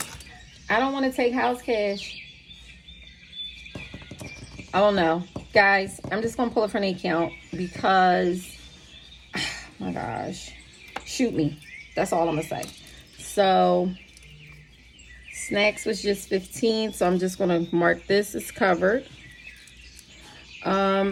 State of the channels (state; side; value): identical; both; correlation 1.00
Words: I don't want to take house cash. I don't know. Guys, I'm just going to pull it from the account because, oh my gosh, shoot me. That's all I'm going to say. So, snacks was just 15, so I'm just going to mark this as covered.